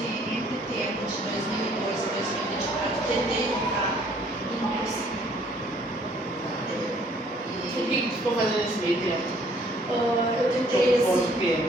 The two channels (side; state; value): both; normal; correlation 0.61